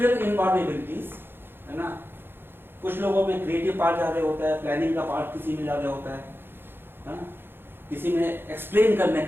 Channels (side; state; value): left; late; 0.10 ms